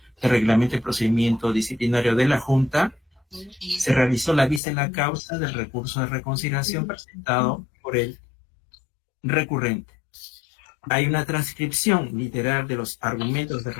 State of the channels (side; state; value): right; drops out; at 4.6 s